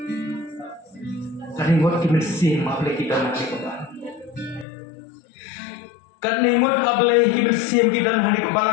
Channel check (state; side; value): drops out; right; at 4.7 s